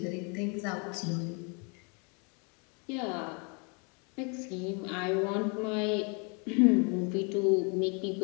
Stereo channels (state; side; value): quieter; right; 34.7 dB